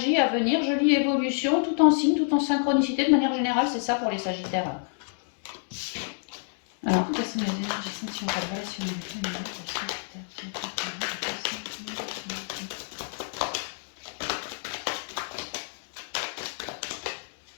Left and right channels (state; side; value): silent; right; digital silence